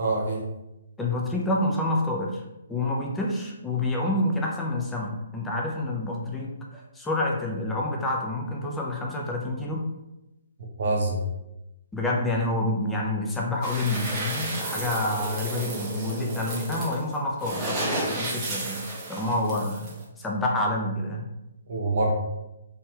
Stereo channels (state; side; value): inverted; both; correlation -0.39